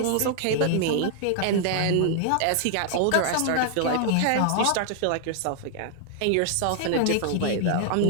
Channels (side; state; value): both; different; correlation 0.00